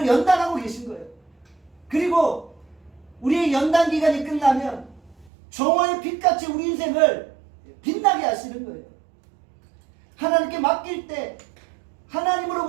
연단하고 계신 거예요. 그리고 우리의 연단 기간이 끝나면 정오의 빛같이 우리 인생을 빛나게 하시는 거예요. 하나님께 맡길 때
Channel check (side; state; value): left; drops out; at 5.3 s